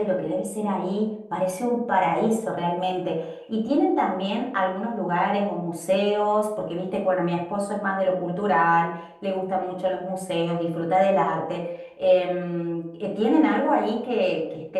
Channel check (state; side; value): identical; both; correlation 1.00